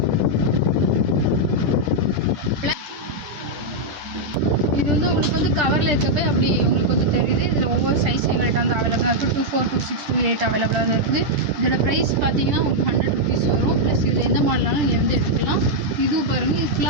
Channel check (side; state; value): left; late; 10 ms